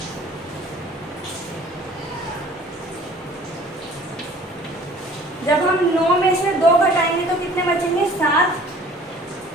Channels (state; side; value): normal; both; correlation 0.51